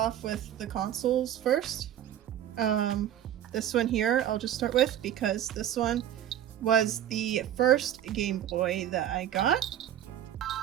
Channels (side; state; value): left; quieter; 11.1 dB